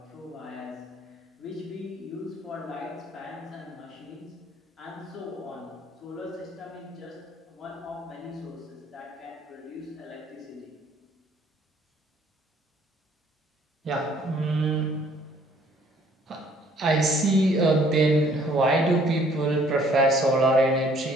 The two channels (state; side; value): normal; both; correlation 0.60